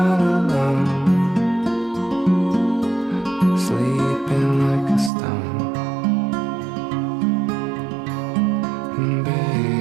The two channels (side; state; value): left; drops out; at 5.1 s